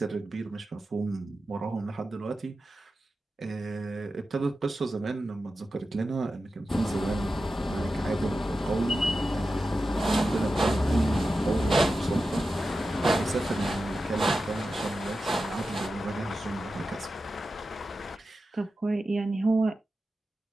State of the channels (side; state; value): both; normal; correlation 0.92